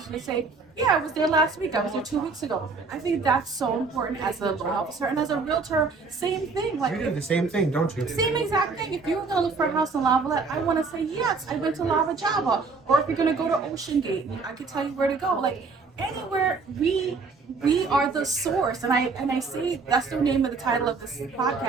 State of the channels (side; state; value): left; quieter; 4.4 dB